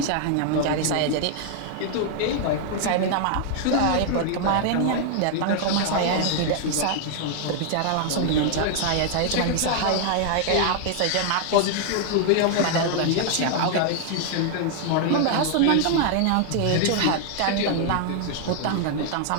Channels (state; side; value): different; both; correlation 0.00